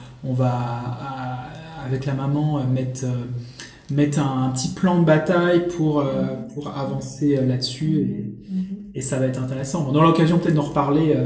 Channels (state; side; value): identical; both; correlation 1.00